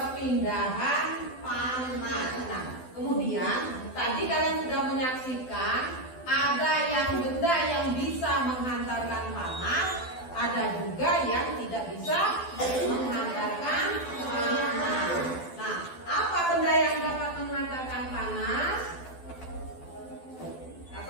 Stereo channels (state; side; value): late; right; 12 ms